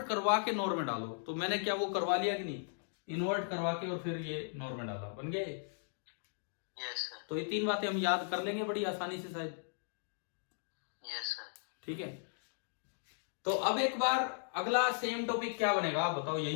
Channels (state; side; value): silent; right; digital silence